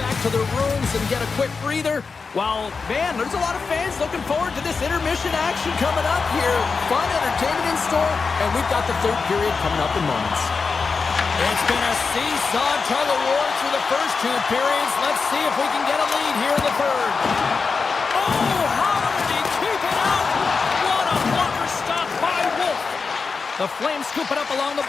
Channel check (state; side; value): quieter; right; 4.8 dB